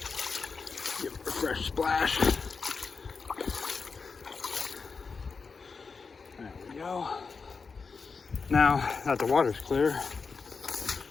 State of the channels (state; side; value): quieter; right; 4.9 dB